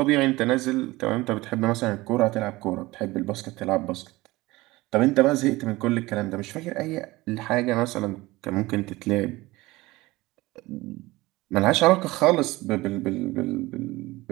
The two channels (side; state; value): left; quieter; 20.0 dB